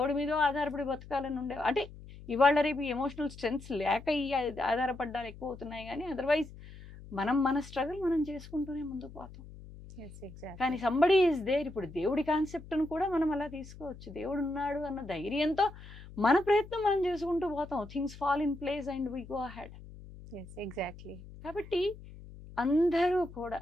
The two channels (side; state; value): left; noise; hum, 16 dB below the sound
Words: మీదో ఆధారపడి బతకాలని ఉండే, అంటే ఇవాళ రేపు ఎమోషనల్ స్ట్రెంగ్స్ లేక ఈ ఆధారపడ్డాలు ఎక్కువ అవుతున్నాయి. కానీ అదర్వైజ్ మన స్ట్రగుల్ మనం చేసుకుంటూనే ముందుకు పోతాం. కానీ సంబడి ఈజ్ దేర్. ఇప్పుడు దేవుడి కాన్సెప్ట్ను కూడా మనం అలా తీసుకోవచ్చు. దేవుడు ఉన్నాడు అన్న ధైర్యంతో మన ప్రయత్నం మనం చేసుకుంటూ పోతాం. Things fall in place and we go ahead. Exactly. కాబట్టి అందరూ కూడా,